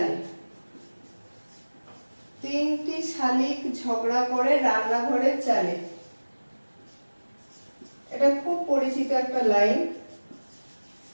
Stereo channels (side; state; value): both; inverted; correlation -1.00